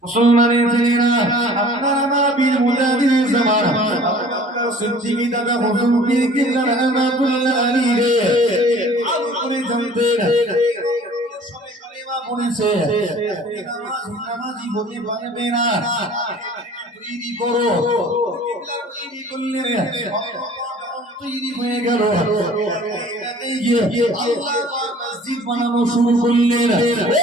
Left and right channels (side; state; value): both; normal; correlation 0.49